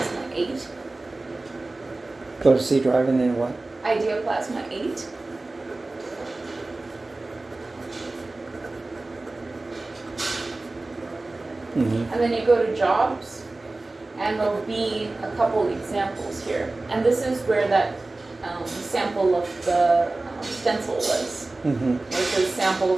8. Go to C drive and then what? Idea Plasma 8. Mm-hmm. And then you go to Jobs, and there'll be a couple examples here. And this is where that sample of the stencil was. Mm-hmm. Where it says sample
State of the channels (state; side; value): quieter; left; 3.1 dB